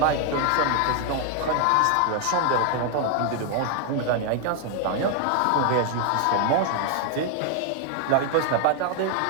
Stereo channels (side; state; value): both; different; correlation 0.00